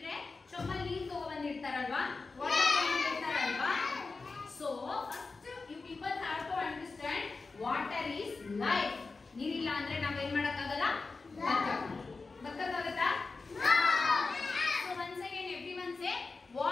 ಚೊಮ್ಮಲ್ಲಿ ನೀರು ತಗೊಂಡ್ಬಂದಿರ್ತಾರಲ್ವಾ, ವಾಟರ್ ತಗೊಂಡಿರ್ತಾರಲ್ವಾ. So first you people have to understand water is life. ನೀರಿಲ್ಲ ಅಂದ್ರೆ ನಾವೇನ್ ಮಾಡಕ್ಕಾಗಲ್ಲ, ಬದುಕಕ್ಕಾಗತ್ತಾ? So once again everyone say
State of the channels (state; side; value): quieter; right; 4.0 dB